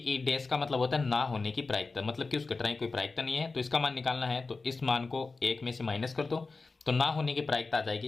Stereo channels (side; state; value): right; quieter; 3.9 dB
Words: डैश का मतलब होता है ना होने की प्रायिकता, मतलब कि उस घटना की कोई प्रायिकता नहीं है तो इसका मान निकालना है, तो इस मान को 1 में से माइनस कर दो तो ना होने की प्रायिकता आ